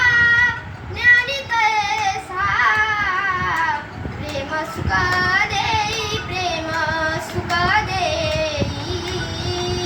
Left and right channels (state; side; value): identical; both; correlation 1.00